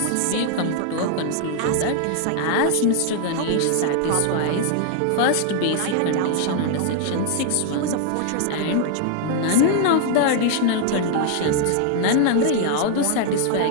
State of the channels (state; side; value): different; both; correlation 0.00